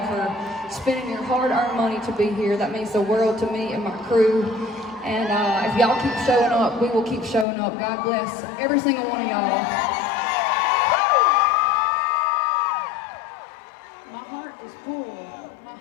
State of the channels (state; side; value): drops out; right; at 7.5 s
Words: for spending your hard-earned money to be here. That means the world to me and my crew. And if y'all keep showing up, we will keep showing up. God bless every single one of y'all. My heart is full. My